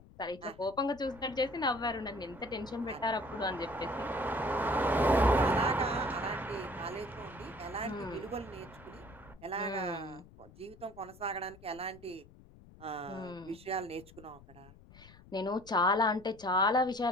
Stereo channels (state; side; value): noise; left; rumble, 21 dB below the sound